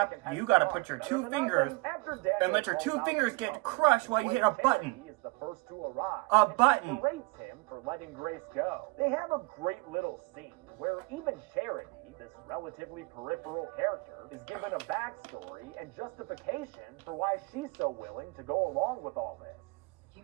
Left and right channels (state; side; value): quieter; left; 26.6 dB